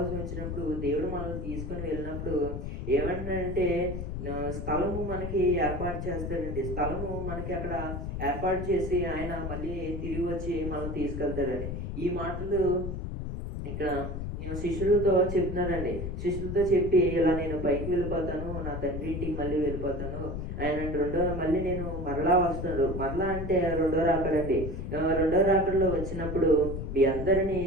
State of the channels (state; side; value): noise; left; rumble, 5 dB below the sound